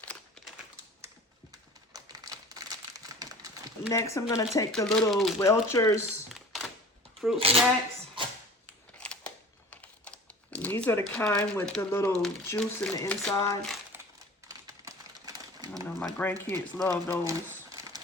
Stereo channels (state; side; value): normal; both; correlation 0.42